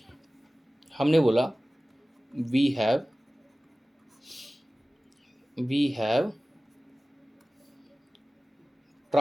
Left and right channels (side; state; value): both; normal; correlation 0.97